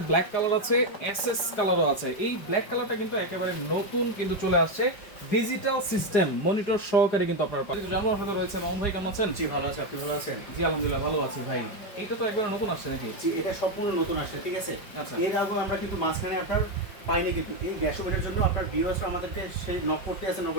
ব্ল্যাক কালার আছে, এসএস কালারও আছে। এই ব্ল্যাক কালারটা কিন্তু একেবারে নতুন কিন্তু চলে আসছে, ডিজিটাল সিস্টেম মনিটর সহকারে কিন্তু আপনারা পাবেন। জানুয়ার হাতে রয়েছে। মামুন ভাই কেমন আছেন? জি ভালো আছি, আপনি ভালো আছেন? জি আলহামদুলিল্লাহ ভালো আছি ভাই। এইটা তো একবার নতুন আসছে নাকি? জি, এটা সম্পূর্ণ নতুন আসছে, ঠিক আছে। আচ্ছা। এর আগে আমরা কিন্তু মাঝখানে আপনার পাইনি, কিন্তু এই গ্যাস ওভেনের জন্য আপনার ভিউয়ার্সরা আমাদেরকে সেই নক করতে আছে, নক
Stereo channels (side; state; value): right; late; 5.4 ms